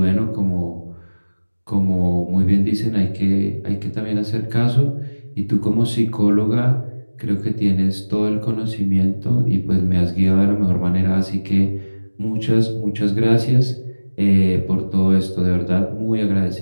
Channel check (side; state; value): both; inverted; correlation -1.00